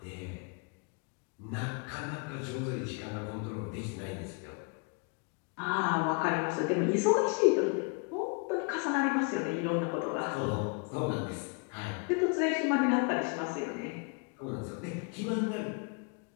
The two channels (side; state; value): right; quieter; 35.0 dB